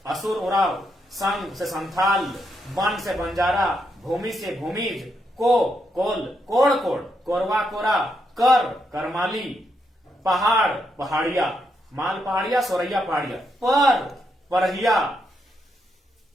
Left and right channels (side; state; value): both; normal; correlation 0.80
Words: असुर उराव, संग से संथाल, वन से बंजारा, भूमि से भूमिज, को कोल कोड़ कोड़, कोरवा कोरा, कर करमाली, पहाड़ पहाड़िया, माल पहाड़िया, सोरैया पहाड़िया, पर परहिया,